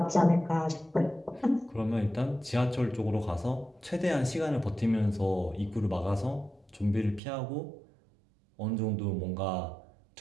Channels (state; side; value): drops out; left; at 7.2 s